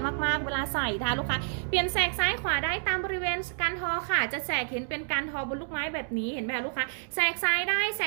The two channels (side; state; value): left; silent; digital silence